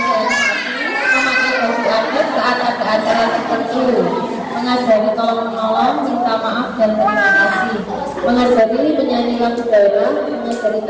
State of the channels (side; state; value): both; identical; correlation 1.00